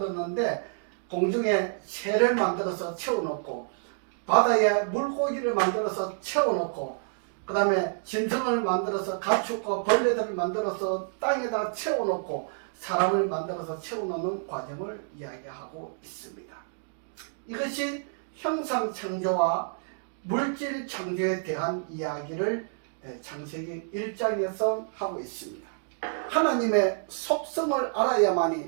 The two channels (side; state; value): left; silent; digital silence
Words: 공중에 새를 만들어서 채워놓고, 바다에 물고기를 만들어서 채워놓고, 그 다음에 짐승을 만들어서 가축과 벌레들을 만들어서 땅에다 채워놓고, 사람을 만들어서 채워놓는 과정을 이야기하고 있습니다. 이것이 형상창조와 물질창조에 대한 이야기를 창세기 1장에서 하고 있습니다. 하나님의 속성을